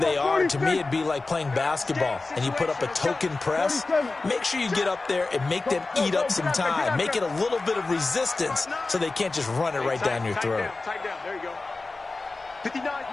are. To me, it'd be like playing basketball, and you put up a token press. Make sure you get up there and make them eat up some time. Make it a little bit of resistance so they can't just run it right down your throat. Tight down, there you go. 59's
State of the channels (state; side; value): quieter; right; 3.5 dB